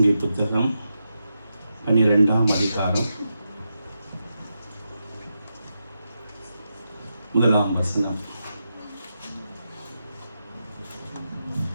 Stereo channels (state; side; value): inverted; both; correlation -0.87